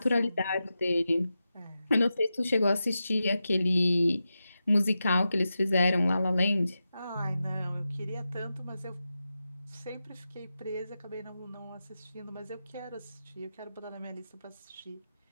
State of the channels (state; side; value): inverted; both; correlation -0.91